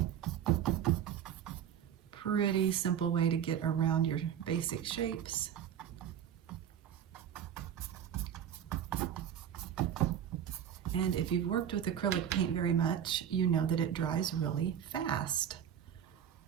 Pretty simple way to get around your basic shapes. And if you've worked with acrylic paint very much, you know that it dries really fast.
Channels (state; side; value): quieter; left; 9.4 dB